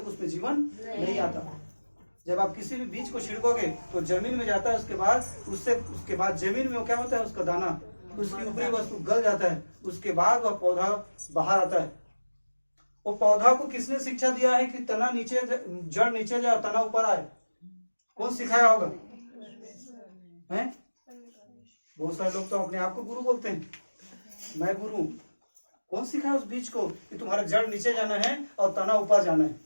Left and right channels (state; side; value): inverted; both; correlation -1.00